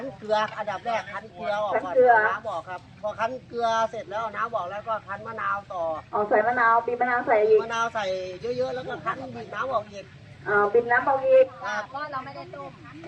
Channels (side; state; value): both; identical; correlation 1.00